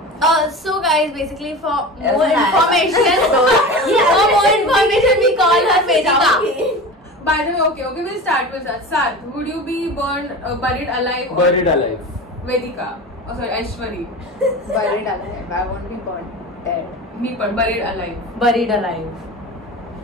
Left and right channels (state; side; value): normal; both; correlation 0.32